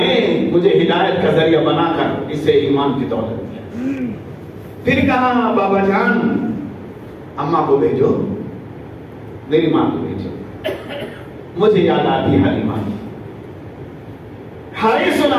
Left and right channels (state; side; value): identical; both; correlation 1.00